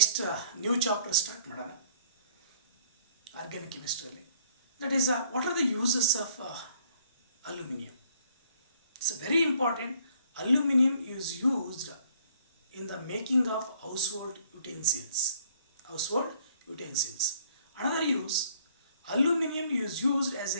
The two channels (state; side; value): inverted; both; correlation -0.61